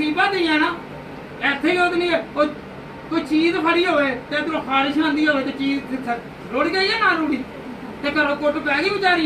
ہی ہے نا ایتھے ہی نہیں ہے کوئی چیز پھڑی ہوئے تے ادھروں خارش آندی ہوئے تے چیز رڑ گئی ہے نہ رڑی تے گھروں کٹ پی گئی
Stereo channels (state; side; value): identical; both; correlation 1.00